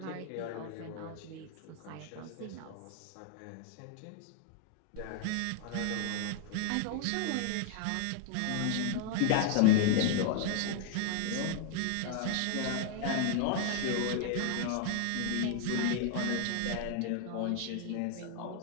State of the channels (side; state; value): both; different; correlation 0.00